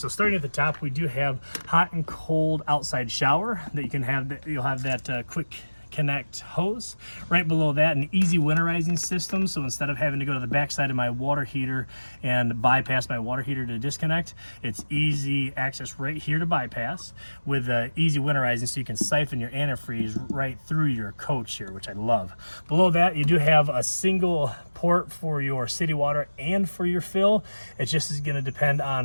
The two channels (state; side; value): inverted; both; correlation -1.00